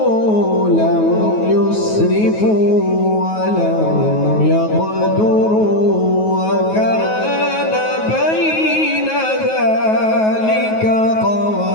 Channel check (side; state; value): right; late; 9.3 ms